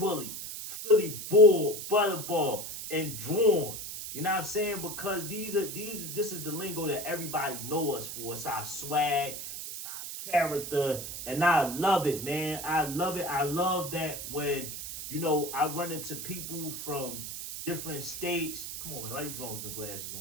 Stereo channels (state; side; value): noise; right; hiss, 7 dB below the sound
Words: Philly Bull, Butterball, and Drawn. You know what I'm saying? Because this is the lingo that everybody know us for. It's our swag, it's our character, and I love it, man. I love it. I love that when I run into people from different states. Come on, man, why you drawing with the glasses